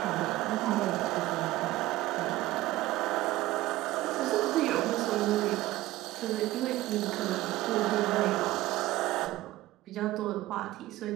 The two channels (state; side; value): quieter; left; 16.7 dB